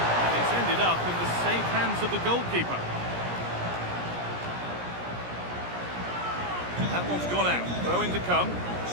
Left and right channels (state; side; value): late; left; 17 ms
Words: it's ended up in the safe hands of the goalkeeper. That one's gone out. Throw in to come.